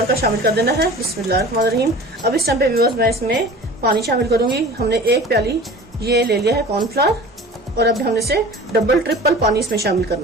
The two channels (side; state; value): both; normal; correlation 0.40